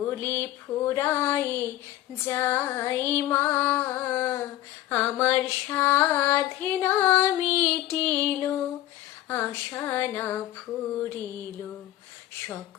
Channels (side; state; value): right; quieter; 14.5 dB